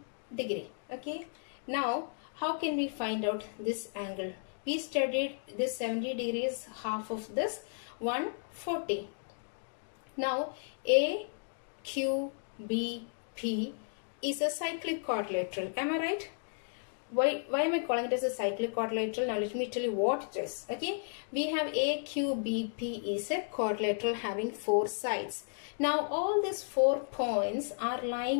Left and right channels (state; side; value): silent; right; digital silence